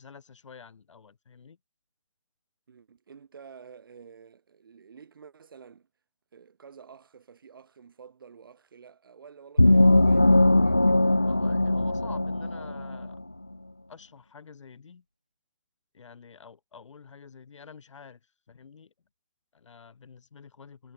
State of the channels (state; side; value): inverted; both; correlation -0.98